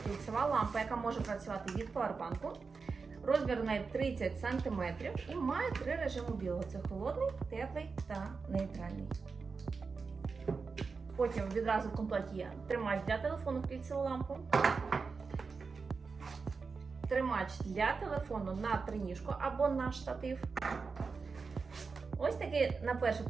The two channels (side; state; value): left; quieter; 4.8 dB